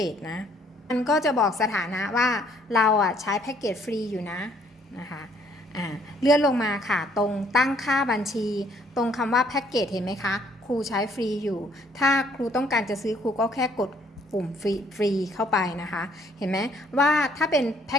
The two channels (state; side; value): normal; both; correlation 0.64